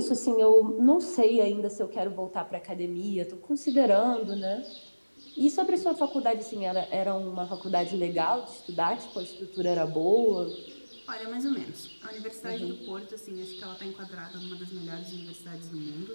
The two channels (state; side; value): inverted; both; correlation -1.00